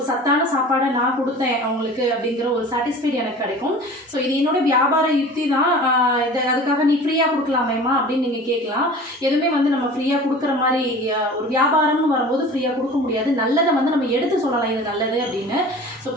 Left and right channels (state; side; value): normal; both; correlation 0.41